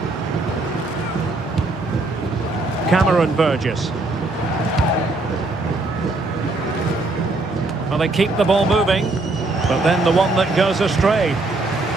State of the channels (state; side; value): quieter; left; 3.1 dB